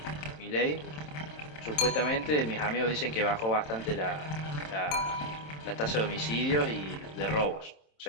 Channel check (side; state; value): right; late; 27 ms